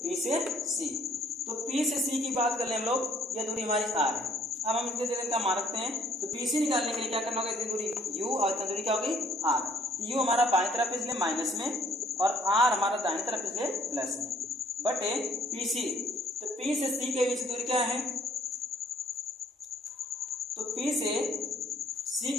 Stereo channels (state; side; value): normal; both; correlation 0.61